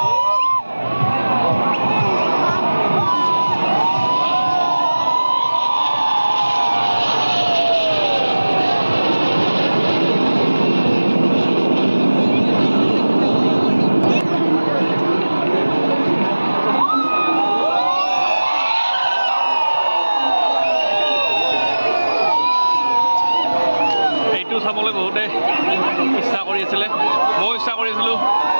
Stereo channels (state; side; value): inverted; both; correlation -1.00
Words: চাবলৈ বহুতে ইচ্ছা কৰি আছিলে, ময়ো ইচ্ছা কৰিছিলোঁ।